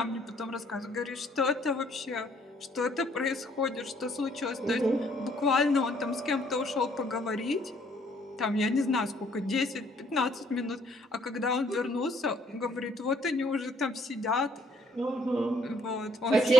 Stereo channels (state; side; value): normal; both; correlation 0.64